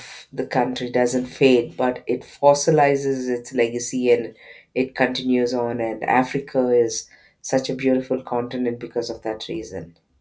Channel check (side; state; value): both; identical; correlation 1.00